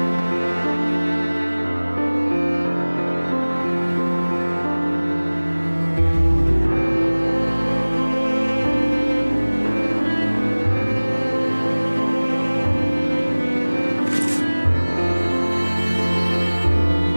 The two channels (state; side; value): inverted; both; correlation -1.00